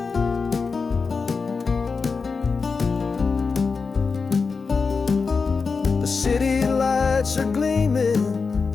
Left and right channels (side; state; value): right; quieter; 4.8 dB